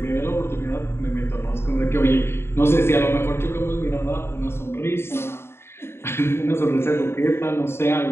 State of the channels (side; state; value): right; late; 0.12 ms